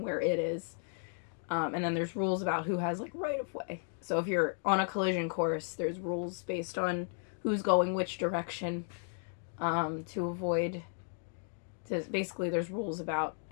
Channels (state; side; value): silent; right; 55 dB below the other